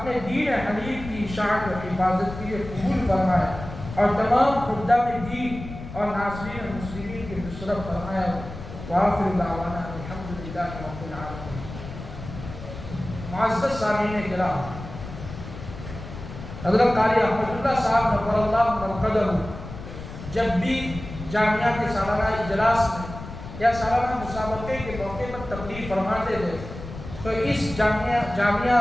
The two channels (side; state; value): left; noise; rumble, 11 dB below the sound